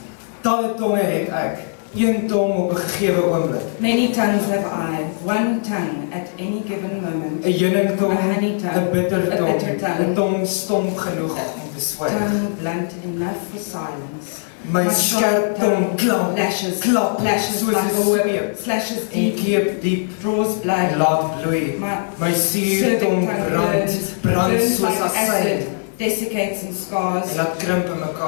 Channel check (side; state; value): right; silent; digital silence